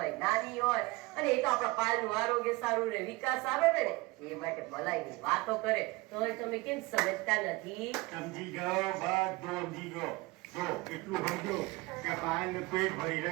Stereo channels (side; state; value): left; quieter; 23.0 dB